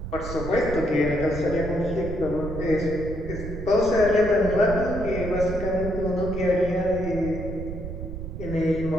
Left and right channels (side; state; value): right; noise; rumble, 7 dB below the sound